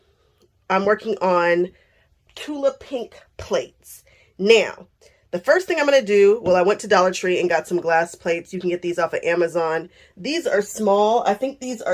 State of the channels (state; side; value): identical; both; correlation 1.00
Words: I'm working on Tula Pink plates. Now, the first thing I'm going to do, well, I went to Dollar Tree and got some glass plates. You can get these off of Amazon. These are small. I think these